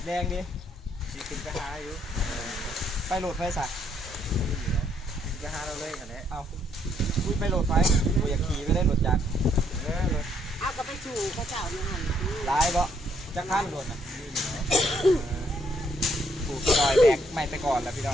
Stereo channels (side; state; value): both; normal; correlation 0.70